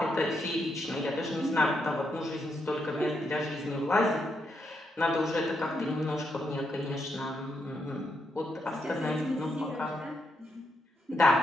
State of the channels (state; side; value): normal; both; correlation 0.80